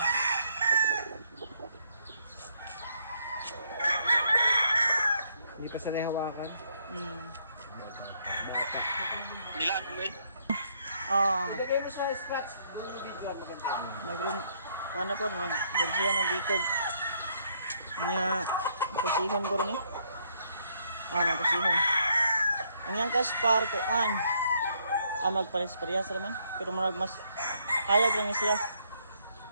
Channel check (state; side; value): inverted; both; correlation -0.70